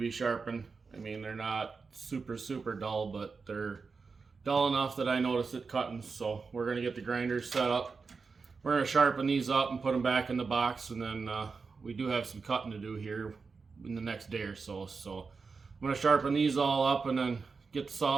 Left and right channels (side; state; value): left; quieter; 4.8 dB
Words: sharpened. I mean, they're not super dull, but they're dull enough that I notice it cutting. So we're gonna get the grinders set up. We're gonna sharpen these up and put them back in the box, and then we do have some cutting to do here in the next day or so. So I'm gonna sharpen these all up and then get the